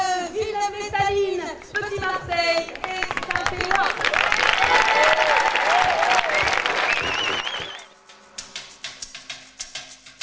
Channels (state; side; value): identical; both; correlation 1.00